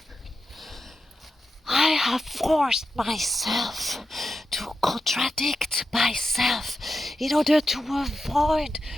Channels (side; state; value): both; normal; correlation 0.89